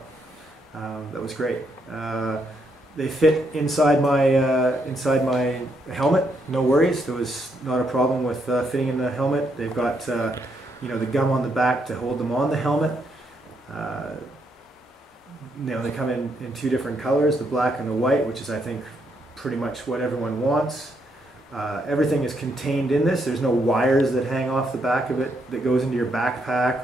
That was great. They fit inside my helmet. No worries. There was not a problem with fitting in the helmet. They've got the gum on the back to hold them on the helmet. They come in two different colors, the black and the white, which is, I think, pretty much what everyone wants. Everything is contained in this. There's no wires that hang off the back of it that goes into your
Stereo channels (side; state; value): both; normal; correlation 0.76